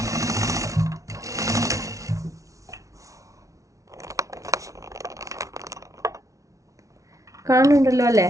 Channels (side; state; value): left; late; 0.16 ms